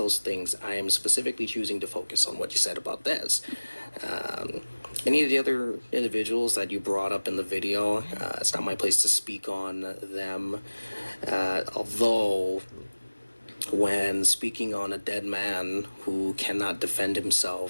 things, I am specifically choosing to focus on what you said about Des. Any of the other individuals that you brought up in the video, it's not my place to speak on them, although when speaking on a dead man who cannot defend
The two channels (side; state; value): both; inverted; correlation -1.00